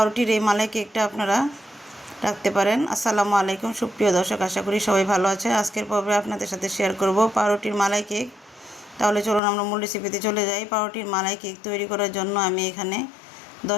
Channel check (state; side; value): drops out; right; at 9.4 s